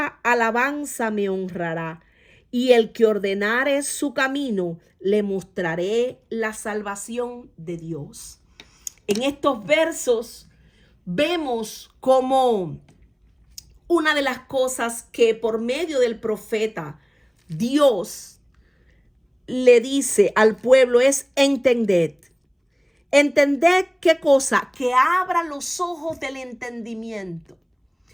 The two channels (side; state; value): both; identical; correlation 1.00